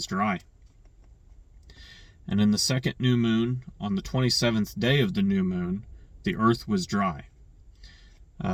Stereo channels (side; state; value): both; identical; correlation 1.00